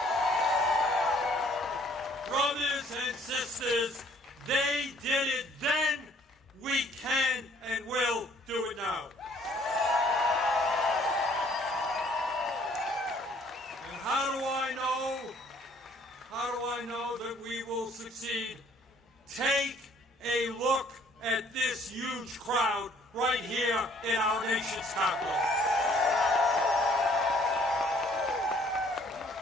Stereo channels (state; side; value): normal; both; correlation 0.60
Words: Brothers and sisters, they did it then, we can and will do it now. And how do I know that we will succeed? Take a look at this huge crowd right here in our nation's capital.